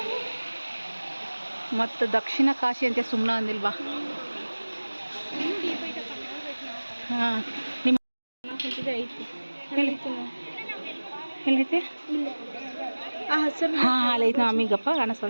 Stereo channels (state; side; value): inverted; both; correlation -1.00